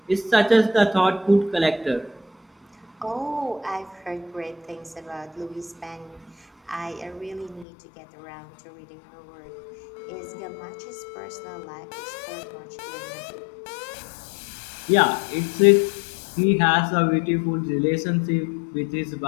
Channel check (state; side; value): drops out; right; at 7.7 s